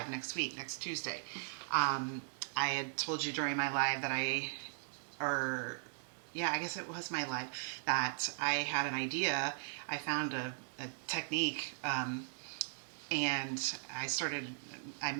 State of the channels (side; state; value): left; silent; digital silence